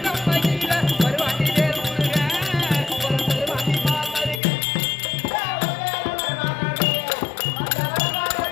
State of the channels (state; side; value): drops out; right; at 4.4 s